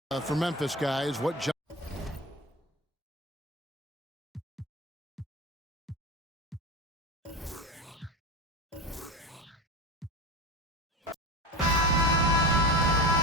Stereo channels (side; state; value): both; normal; correlation 0.25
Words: For Memphis guys, what John